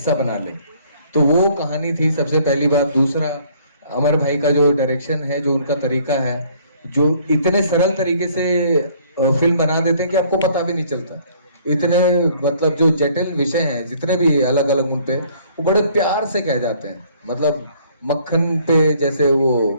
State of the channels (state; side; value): inverted; both; correlation -0.60